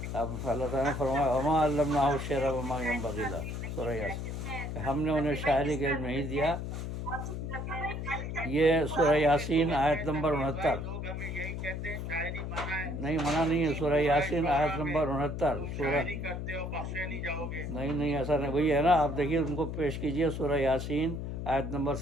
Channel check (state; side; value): noise; left; hum, 5 dB below the sound